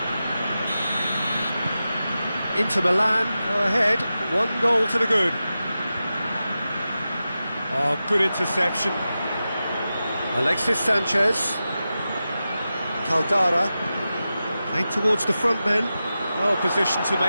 Inter Milan go ahead, 1 to the good. Oh, good interception. Alexis Sanchez. Caldara. Playing towards the front men. Well positioned to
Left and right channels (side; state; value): both; inverted; correlation -0.93